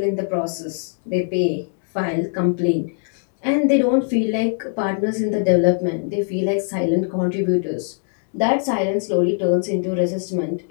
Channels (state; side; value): silent; right; 63 dB below the other